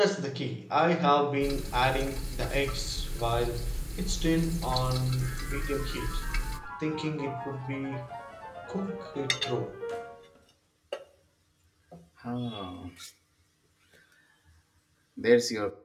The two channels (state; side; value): identical; both; correlation 1.00